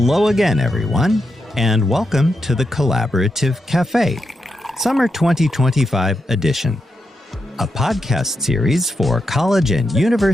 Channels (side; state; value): both; normal; correlation 0.85